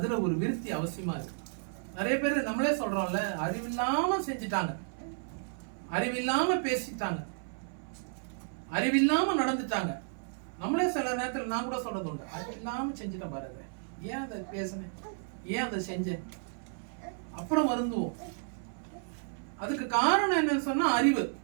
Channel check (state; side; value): silent; left; 56 dB below the other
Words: ஒரு விருத்தி அவசியமா இருக்கு. நிறைய பேர் நம்மளே சொல்றோம்ல, அறிவில்லாம செஞ்சுட்டாங்க, அறிவில்லாம பேசிட்டாங்க, அறிவில்லாம நடந்துட்டாங்க. நம்மளே சில நேரத்தில் நான் கூட சொல்றது உண்டு, அறிவில்லாம செஞ்சுட்டேன் பாருங்க, ஏன் அதை பேசினேன், ஏன் அதை செஞ்சேன், அப்புறம் வருந்துவோம். அதுக்கு காரணம் என்னன்னு சொன்னா அறிவு.